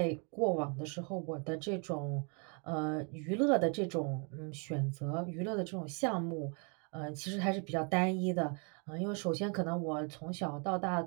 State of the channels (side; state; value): left; quieter; 37.3 dB